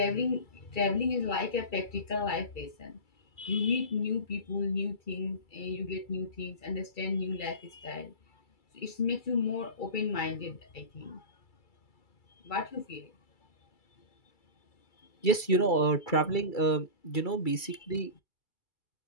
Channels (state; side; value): late; right; 2.3 ms